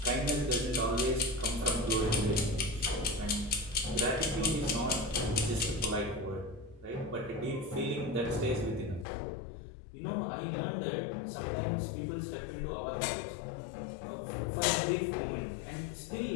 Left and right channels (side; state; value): right; drops out; at 9.1 s